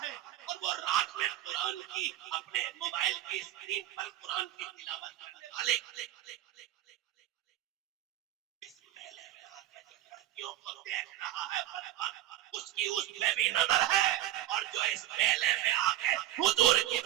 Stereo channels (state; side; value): quieter; left; 13.3 dB